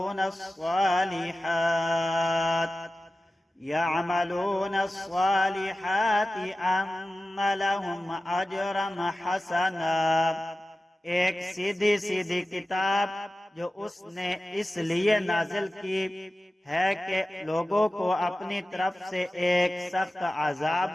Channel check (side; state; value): both; normal; correlation 0.95